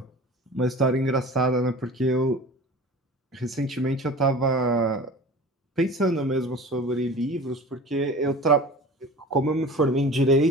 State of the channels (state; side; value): normal; both; correlation 0.39